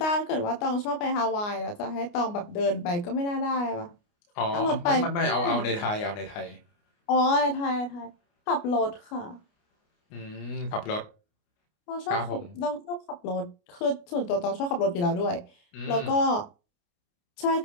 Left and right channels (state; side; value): late; right; 29 ms